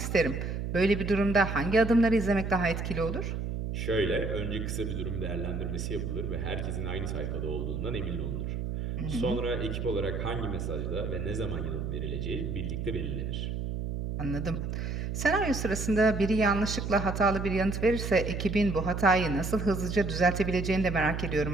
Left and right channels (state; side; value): noise; right; hum, 3 dB below the sound